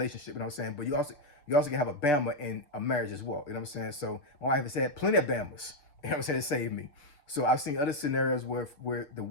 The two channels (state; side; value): late; right; 6.8 ms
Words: you know what I'm saying? But you also can have a Bama in a marriage as well, you know what I'm saying? So my wife has had plenty of Bamas, you know what I'm saying, to save me. So I've seen other scenarios where the